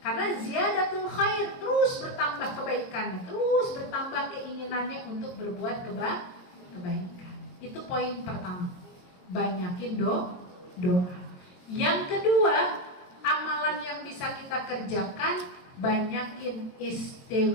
ziyadatul khair, terus bertambah kebaikannya, terus bertambah keinginannya untuk berbuat kebaikan. Itu poin pertama. Banyakin doa. Yang kedua, amalan yang bisa kita kerjakan, banyakin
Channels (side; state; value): right; late; 22 ms